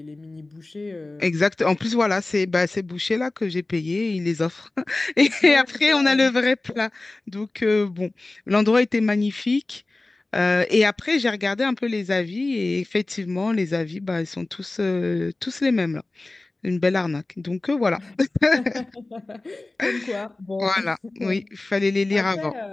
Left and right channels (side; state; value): right; quieter; 3.0 dB